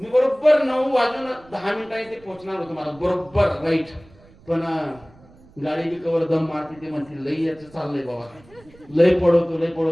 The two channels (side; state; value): right; noise; rumble, 26 dB below the sound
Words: बरोबर 9:10 ते पोहोचणार होतो मला बरोबर राईट. पण गाडी बी कवर दम मारते, ते म्हणते लई याचं चाललंय बाबा, लय